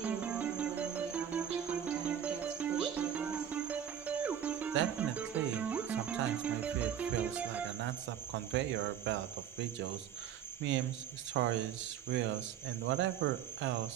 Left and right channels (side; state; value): left; quieter; 9.4 dB